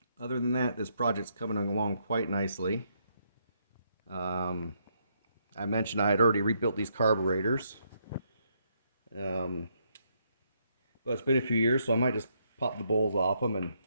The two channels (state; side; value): inverted; both; correlation -0.75